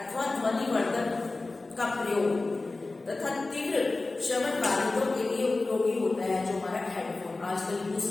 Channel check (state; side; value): quieter; right; 3.3 dB